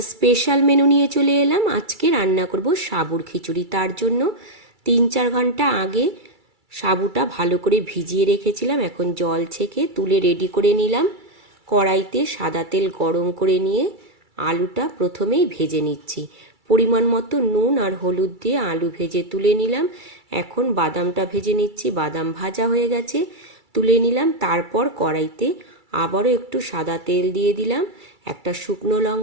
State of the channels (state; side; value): late; left; 2.3 ms